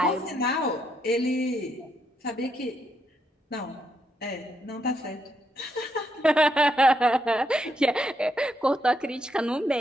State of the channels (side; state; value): both; normal; correlation 0.78